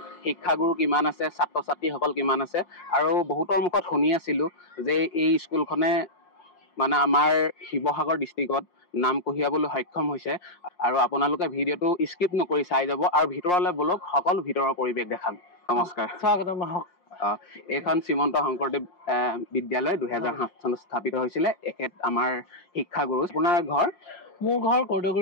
শিক্ষাগুৰু কিমান আছে, ছাত্ৰ ছাত্ৰীসকল কিমান আছে, আৰু বহুতৰ মুখত শুনি আছিলোঁ যে এই স্কুলখনে মানে আমাৰ শিৱসাগৰ ডিষ্ট্ৰিক্টত নাম কঢ়িয়াবলৈ সক্ষম হৈছে। আৰু আপোনালোকে ভিডিঅ'টো স্কিপ নকৰি চাই যাব আৰু ভিতৰলৈ বলক, সকলো ভিতৰৰ পৰিৱেশ দেখাম। নমস্কাৰ, স্বাগতম। এইখন শ্ৰীমন্ত শংকৰদেৱ বিদ্যালয় 2007 চনত স্থাপিত হৈছিলে। এখেত আমাৰ শিক্ষাগুৰু। আপোনাৰ ঘৰ? মোৰ ঘৰ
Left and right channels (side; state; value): right; late; 5.6 ms